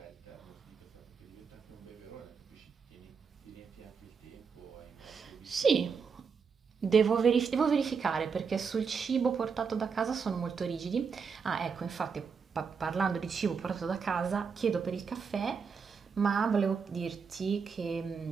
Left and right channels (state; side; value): quieter; left; 5.8 dB